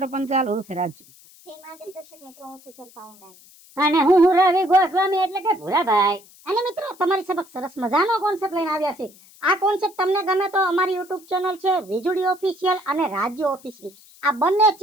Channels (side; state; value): left; noise; hiss, 25 dB below the sound